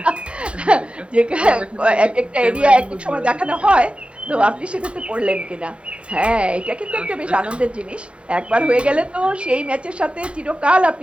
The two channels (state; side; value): late; left; 0.058 ms